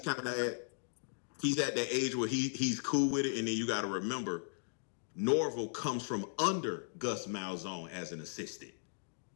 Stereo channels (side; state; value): right; silent; digital silence